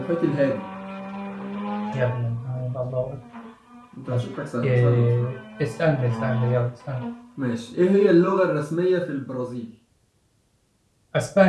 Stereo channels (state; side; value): identical; both; correlation 1.00